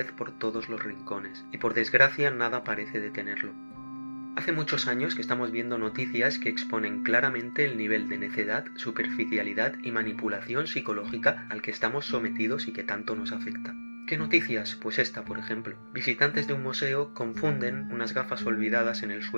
por todos los rincones, y por desgracia nada parece detenerlo. Hace muchos años que estamos viendo noticias que exponen claramente el nivel de necedad, superficialidad y manipulación psicológica al que estamos sometidos y que tanto nos afecta. ¿Qué noticias? Pues esta, por ejemplo. Visitantes de un museo confunden unas gafas olvidadas en el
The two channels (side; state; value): both; inverted; correlation -1.00